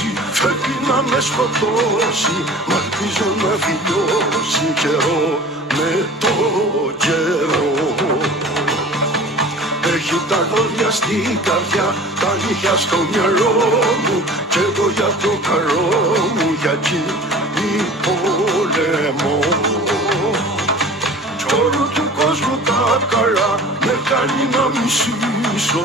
φεύγει να με σκοτώσει, μ' ελπίζω να φιλιώσει καιρό με το καιρό. Έχει τα δόντια στην καρδιά, τα νύχια στο μυαλό μου, κι εγώ για το καλό μου, για εκείνη πολεμώ. Κι όλου του κόσμου τα καλά με κάνει να μισήσω,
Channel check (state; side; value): normal; both; correlation 0.41